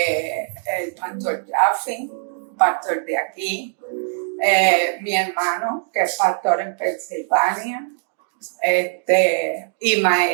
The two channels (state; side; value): silent; left; digital silence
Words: pastor Jaffe, pastor de aquí, mi hermano, que es pastor en Pensilvania, y